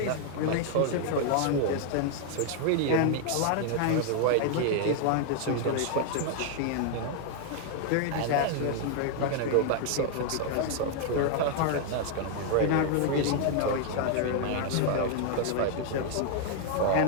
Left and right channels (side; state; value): both; different; correlation 0.00